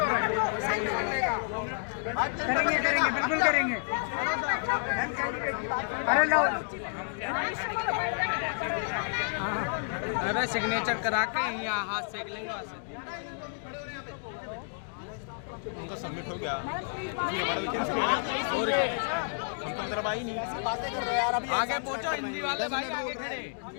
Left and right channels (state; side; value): silent; right; digital silence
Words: करेंगे बिल्कुल करेंगे। अरे लो अरे सिग्नेचर करा के यहाँ हाथ सेक लेंगे वहाँ से। उनका सबमिट हो गया, हमारा मीटिंग से और क्या, हम तो तरफ आई नहीं। आगे पहुँचो हिंदी वाले भाई, आगे खड़े।